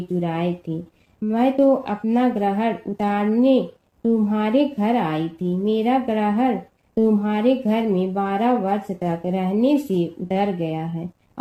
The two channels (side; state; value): both; identical; correlation 1.00